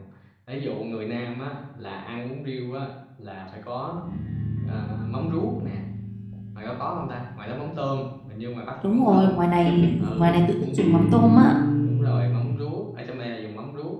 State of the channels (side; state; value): both; identical; correlation 1.00